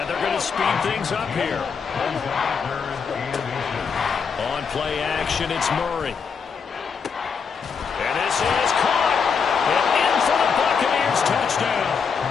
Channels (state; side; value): quieter; right; 6.0 dB